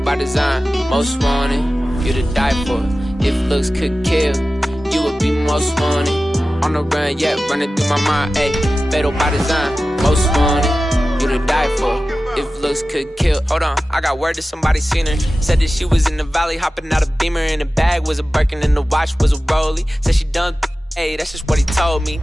design, most wanted. You to die for. If looks could kill, you would be most wanted. On the run, yeah, running through my mind. Ayy, fatal by design, most wanted. You to die for. If looks could kill. Hold on, I got word that somebody seen her. Said that she was in the valley, hopping out a Beamer. And the bag was a Birkin and the watch was a Rollie. Said she done, hey, that's just what he told me.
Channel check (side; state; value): both; normal; correlation 0.95